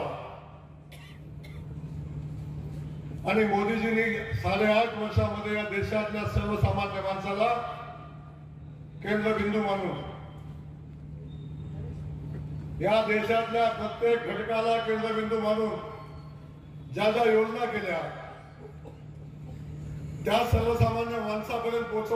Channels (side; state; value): both; identical; correlation 1.00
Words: आणि मोदीजींनी 8.5 वर्षामध्ये या देशातल्या सर्वसामान्य माणसाला केंद्रबिंदू मानून या देशातल्या प्रत्येक घटकाला केंद्रबिंदू मानून ज्या ज्या योजना केल्या त्या सर्वसामान्य माणसापर्यंत